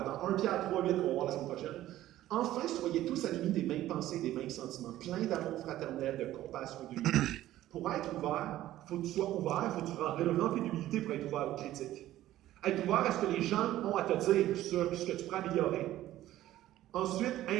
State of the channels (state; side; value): quieter; left; 14.2 dB